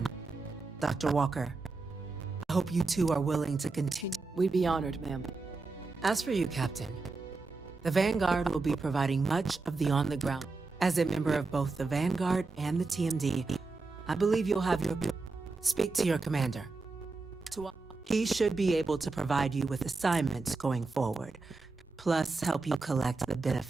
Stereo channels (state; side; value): quieter; left; 3.8 dB